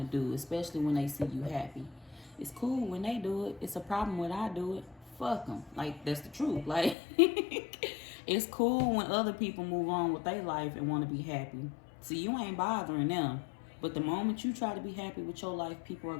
do, especially when they see you happy. It's cool when they do it. It's a problem when I do it. Fuck them. Like, that's the truth. Like, it's cool when other people move on with their life and want to be happy. See, you ain't bothering them. But the moment you try to be happy with your life, people are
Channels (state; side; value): drops out; right; at 7.0 s